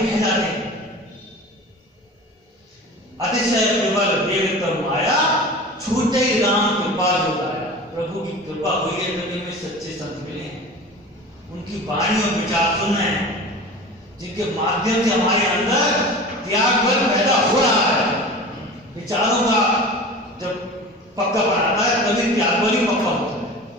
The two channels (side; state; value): both; normal; correlation 0.36